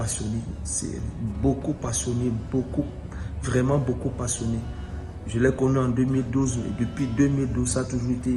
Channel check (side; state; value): both; identical; correlation 1.00